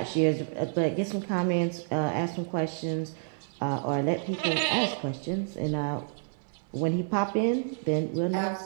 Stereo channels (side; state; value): left; silent; 58 dB below the other